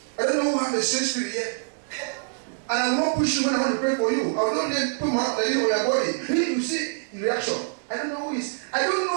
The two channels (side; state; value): left; silent; digital silence